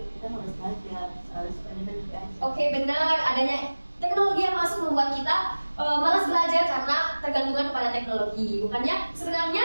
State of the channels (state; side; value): inverted; both; correlation -1.00